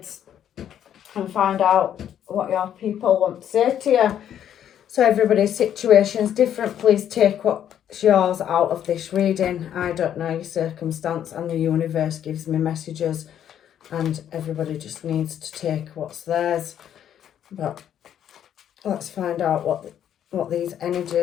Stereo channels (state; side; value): quieter; right; 10.0 dB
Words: and find out what your people want to say to you. So everybody's situation is different. Please take what's yours out of this reading. I don't know your circumstance, and the universe gives me messages, and everybody just needs to take what's theirs. But let's find out what these